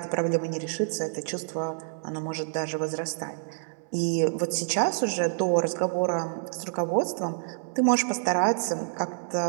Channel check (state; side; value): silent; left; digital silence